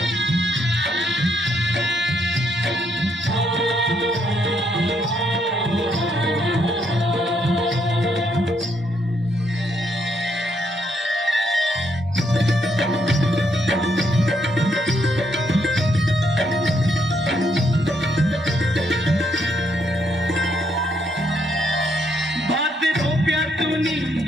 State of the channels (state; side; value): normal; both; correlation 0.74